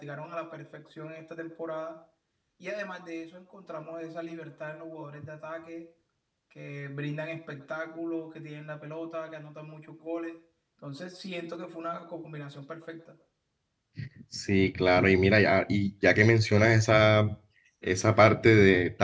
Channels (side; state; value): both; identical; correlation 1.00